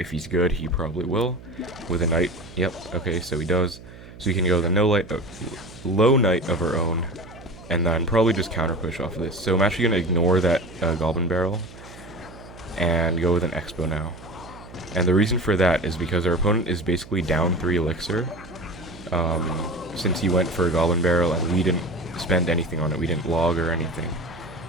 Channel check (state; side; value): noise; right; hum, 18 dB below the sound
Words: he's good, he probably will. With a Knight, yep, okay, so he does. So we can go the low Knight of our own, and then probably just counter push off of this. So I'm actually going to ignore that Goblin Barrel and go with an Xbow now. And the reason for that is because our opponent is basically down 3 elixir, since he went for a Goblin Barrel and we didn't spend anything on it. We didn't log or anything.